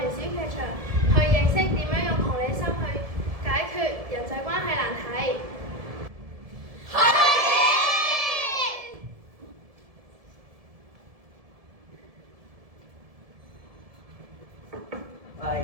小劇場去認識點樣用同理心去解決人際關係難題。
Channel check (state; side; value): late; left; 1.7 ms